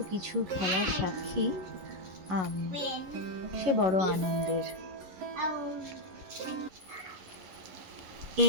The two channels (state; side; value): late; left; 11 ms